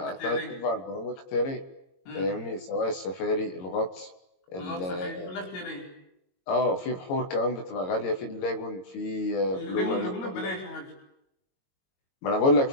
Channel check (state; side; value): late; right; 22 ms